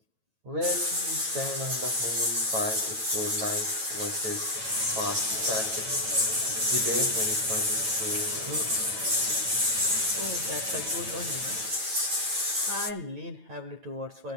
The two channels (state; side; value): late; left; 9.1 ms